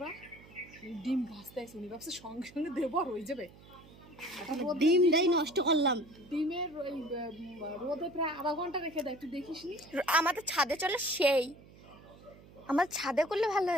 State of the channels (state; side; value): noise; right; hum, 22 dB below the sound